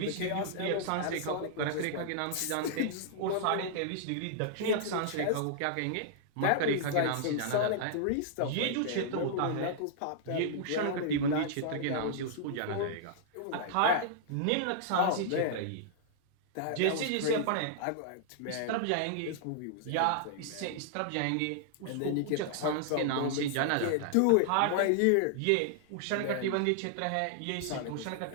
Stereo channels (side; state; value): both; different; correlation -0.01